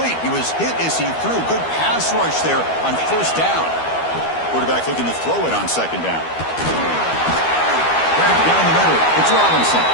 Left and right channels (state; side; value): late; right; 12 ms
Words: He was hit as he threw. Good pass rush there on first down. Quarterback looking to throw it on second down. Right down the middle, it's Robinson.